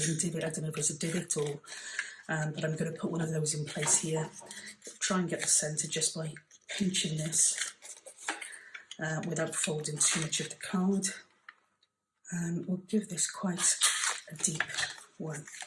divot, I don't know if it's a divot or, but I'm going to put one of those in place here. Try and get the centre just by pinching this without folding too much of the card. And we'll give this quite a deep one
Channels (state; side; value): identical; both; correlation 1.00